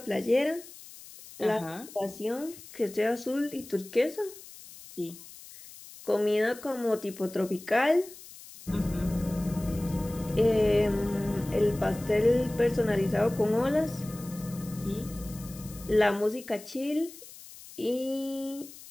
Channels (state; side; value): noise; left; hiss, 17 dB below the sound